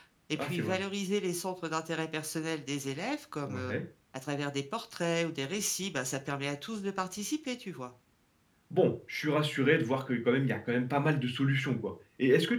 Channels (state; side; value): identical; both; correlation 1.00